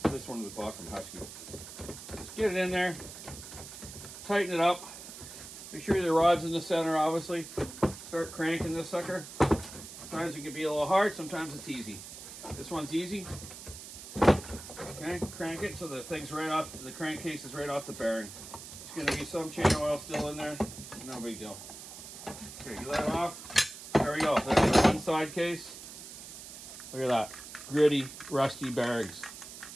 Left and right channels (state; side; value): noise; right; hiss, 13 dB below the sound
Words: this one was bought from Husky. Just get it in there. Tighten it up. Make sure the rod's in the center, obviously. Start cranking this sucker. Sometimes it can be a little hard, sometimes it's easy. This one's easy. Okay, crank it so the thing's right off, the crankcase is right off the bearing. There's going to be some chain oil still in there. No big deal. Okay, get that off. There we go. There's the one side case. Look at that. Gritty, rusty bearings.